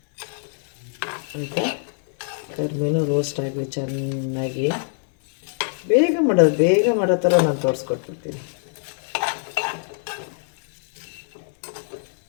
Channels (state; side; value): silent; right; 60 dB below the other